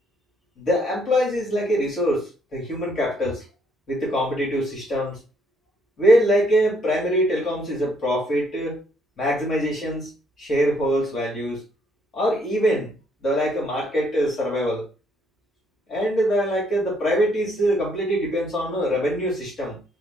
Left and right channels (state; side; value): normal; both; correlation 0.69